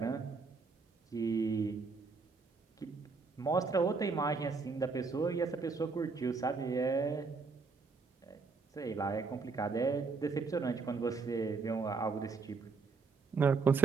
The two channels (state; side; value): quieter; left; 4.5 dB